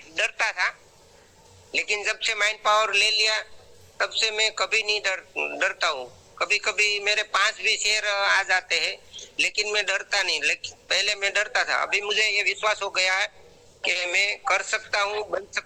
डरता था, लेकिन जब से माइंड पावर ले लिया तब से मैं कभी नहीं डरता हूँ। कभी कभी मेरे पास भी शेर आ जाते हैं लेकिन मैं डरता नहीं, लेकिन पहले मैं डरता था। अभी मुझे ये विश्वास हो गया है कि मैं कर सकता हूँ, बन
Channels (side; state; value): both; identical; correlation 1.00